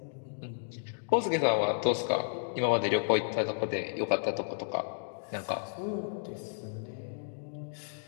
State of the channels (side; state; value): right; silent; digital silence